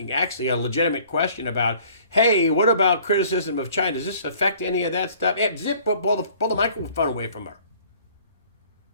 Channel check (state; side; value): inverted; both; correlation -0.54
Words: actually a legitimate question about, hey, what about criticism of China? Does this affect any of that stuff? Zip, pull the microphone away from her.